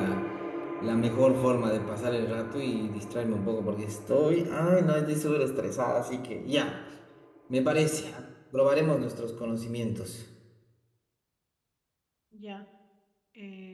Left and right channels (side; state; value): both; identical; correlation 1.00